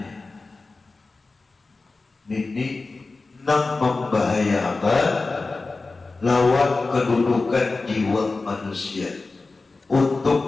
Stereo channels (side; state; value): right; quieter; 3.7 dB